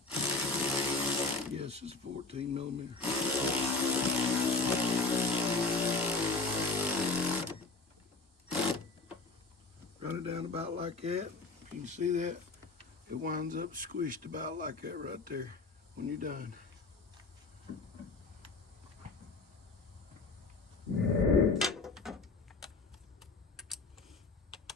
Yes, it's 14 millimeter. Run it down about like that. If you can see that, it winds up squished about like that right there when you're done.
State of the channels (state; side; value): quieter; right; 3.7 dB